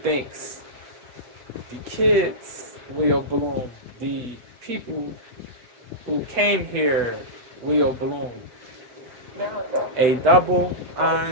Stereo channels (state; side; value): late; left; 8.2 ms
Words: the kids will bloom, the people who came here will bloom. A double